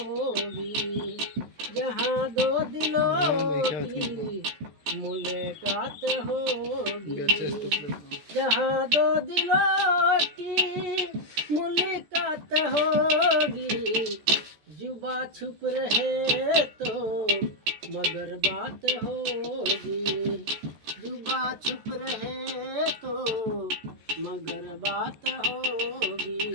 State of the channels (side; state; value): left; late; 14 ms